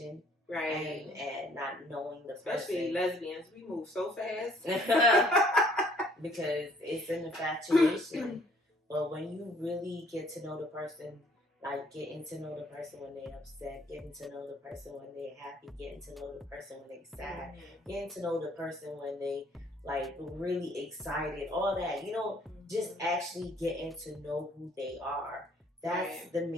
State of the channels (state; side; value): normal; both; correlation 0.61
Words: Right. And not knowing the Especially person. lesbians, we move so fast. Because it's an infatuation. But when you really get to know the person, like getting to know the person when they're upset, getting to know the person when they're happy, getting to know the person when they're sad, getting to know the person when they like really excited, all that, you know, just actually getting to know who they are. That's the